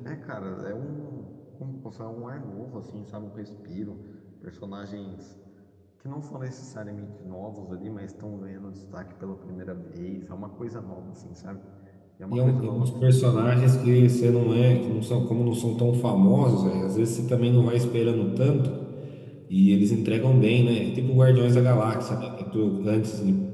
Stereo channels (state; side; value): identical; both; correlation 1.00